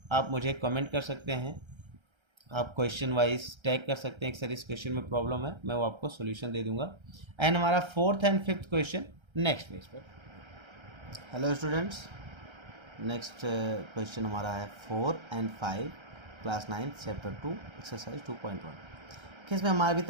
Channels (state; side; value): late; left; 1.3 ms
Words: आप मुझे कमेंट कर सकते हैं, आप क्वेश्चन वाइज टैग कर सकते हैं कि सर इस क्वेश्चन में प्रॉब्लम है, मैं वो आपको सॉल्यूशन दे दूंगा। एंड हमारा fourth and fifth question next page पर। हेलो स्टूडेंट्स, नेक्स्ट क्वेश्चन हमारा है 4 and 5 क्लास 9 चैप्टर 2 एक्सरसाइज 2.1। इसमें हमारा अभी